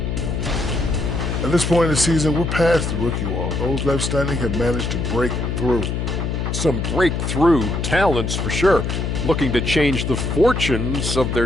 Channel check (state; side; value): noise; left; hum, 2 dB below the sound